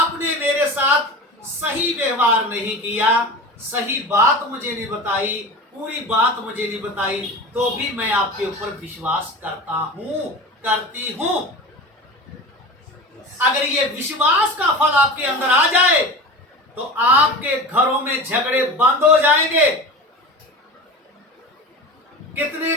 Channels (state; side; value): normal; both; correlation 0.32